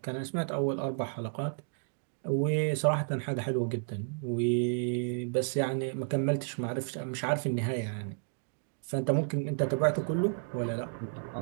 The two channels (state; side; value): silent; left; digital silence